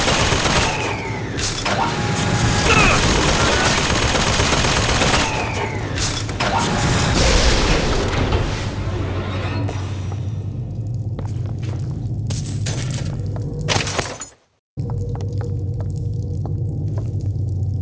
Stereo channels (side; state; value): both; identical; correlation 1.00